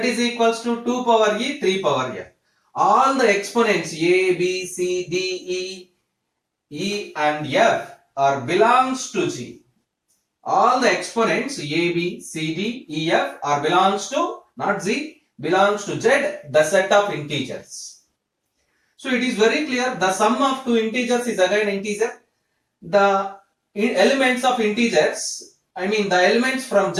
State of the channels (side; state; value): both; identical; correlation 1.00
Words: equals to 2 power e, 3 power f. All the exponents a, b, c, d, e and f are belongs to G. All the exponents a, b, c, d, e, f are belongs to, not Z, belongs to Z, the set of integers. So it is very clear the sum of two integers is again integer. The elements of integers, the elements from